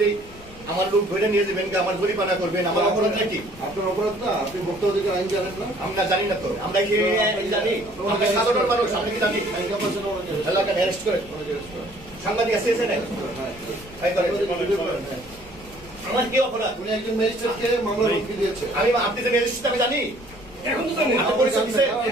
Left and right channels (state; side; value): noise; left; rumble, 21 dB below the sound